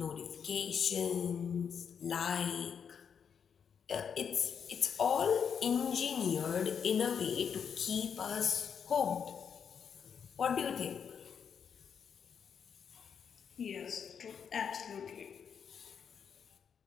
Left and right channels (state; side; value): quieter; right; 7.2 dB